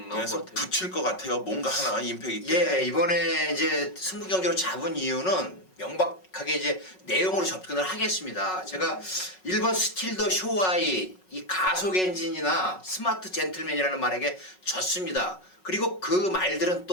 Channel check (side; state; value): right; late; 5.4 ms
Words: 나올 그래서 것 같아요. 붙일 것 같아요. 뭔가 하나 임팩 있게. 예, 이번에 이제 승부 경기로 잡은 이유는 명백하게 이제 내용으로 접근을 하겠습니다. 제가 1번 스틸 더 쇼와이, 이 가속 엔진이나 스마트 젠틀맨이라는 말에게 졌습니다. 그리고 그 말들은